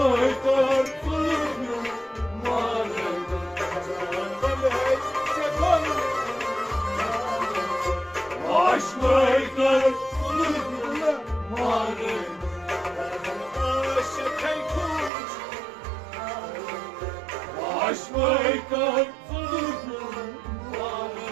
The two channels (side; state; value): left; drops out; at 15.1 s